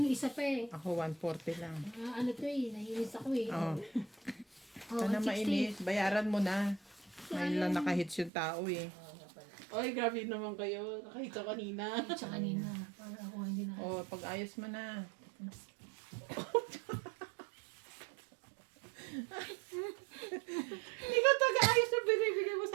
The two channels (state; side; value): drops out; left; at 8.3 s